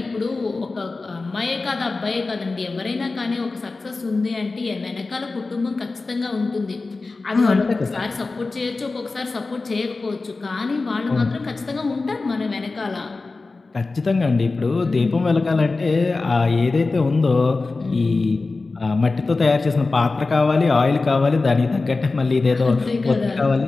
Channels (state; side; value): quieter; right; 3.7 dB